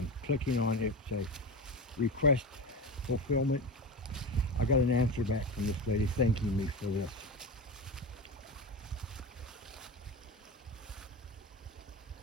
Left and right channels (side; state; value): both; normal; correlation 0.23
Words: clicking on it, say request fulfillment, I got an answer back from this lady thanking me for this.